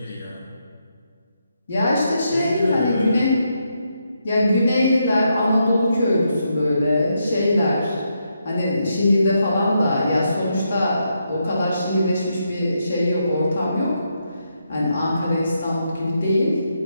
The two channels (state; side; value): inverted; both; correlation -0.81